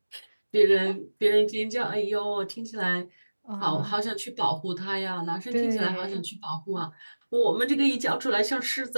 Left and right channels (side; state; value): both; inverted; correlation -1.00